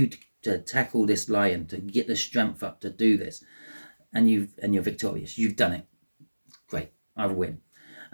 to tackle this lion, to get the strength up to do this, and you're victorious. You've done it. Great, I win.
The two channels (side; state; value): both; inverted; correlation -1.00